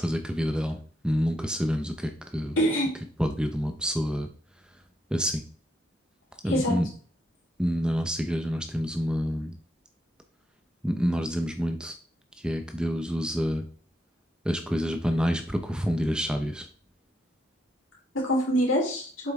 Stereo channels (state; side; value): normal; both; correlation 0.79